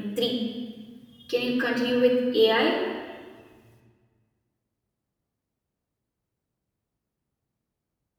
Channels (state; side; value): identical; both; correlation 1.00